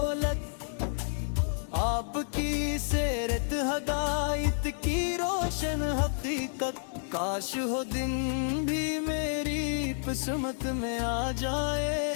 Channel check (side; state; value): right; silent; digital silence